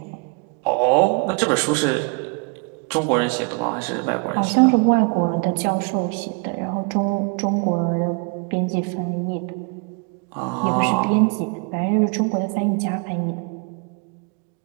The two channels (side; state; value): left; quieter; 36.0 dB